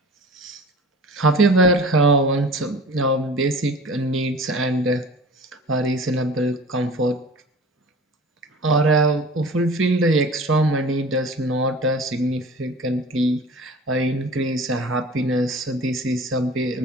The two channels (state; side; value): normal; both; correlation 0.41